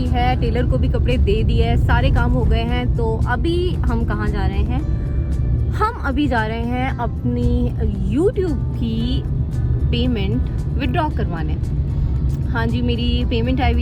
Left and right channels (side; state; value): both; identical; correlation 1.00